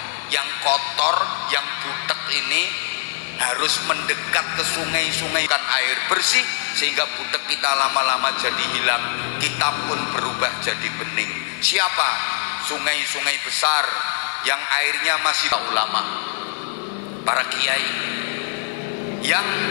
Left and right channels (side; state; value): right; silent; digital silence